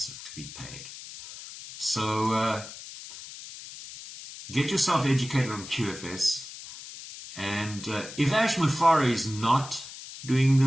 to be paid. So get yourself educated on QFS, and if Ash Mufara is not doing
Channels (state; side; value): noise; left; hiss, 13 dB below the sound